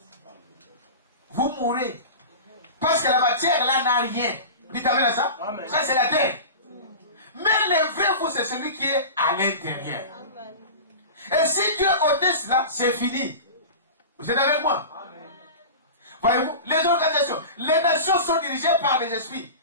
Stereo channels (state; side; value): inverted; both; correlation -0.31